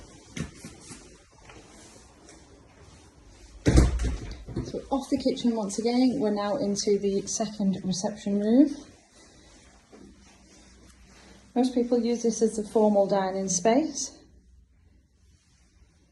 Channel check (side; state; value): both; identical; correlation 1.00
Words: So off the kitchen once again, we're now into the second reception room. Most people use this as a formal dining space.